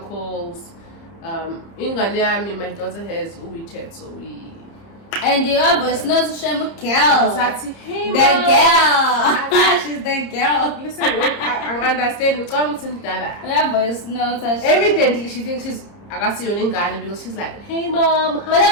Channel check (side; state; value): right; late; 30 ms